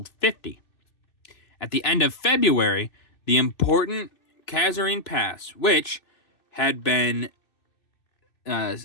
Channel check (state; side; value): late; right; 2.6 ms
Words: 50. At the end of February, the important Kasserine Pass, which had